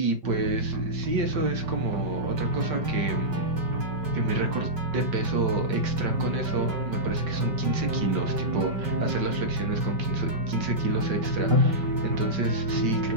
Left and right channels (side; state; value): left; late; 5.2 ms